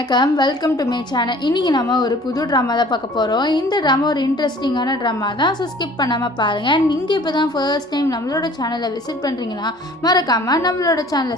Welcome to my channel. இன்னைக்கு நம்ம ஒரு புது ட்ராமா தான் பார்க்க போகிறோம். இந்த ட்ராமா ஒரு இன்ட்ரெஸ்டிங்கான ட்ராமா தான். ஸோ ஸ்கிப் பண்ணாமல் பாருங்கள். நீங்கள் இப்போ தான் ஃபர்ஸ்ட் டைம் நம்மளோட சேனலை விசிட் பண்ணுறீங்கன்னா மறக்காமல் நம்மளோட சேனலை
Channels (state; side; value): normal; both; correlation 0.50